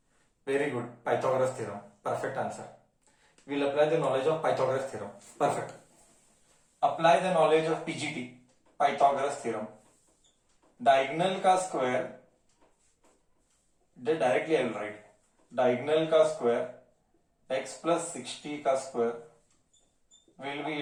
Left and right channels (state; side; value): identical; both; correlation 1.00